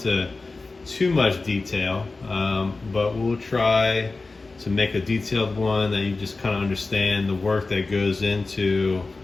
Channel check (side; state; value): right; quieter; 3.6 dB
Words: too much detail, but we'll try to make a detailed one that you just kind of understand the work that goes into